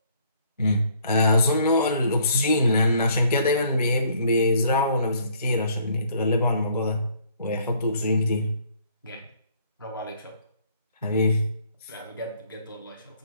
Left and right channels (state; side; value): inverted; both; correlation -0.62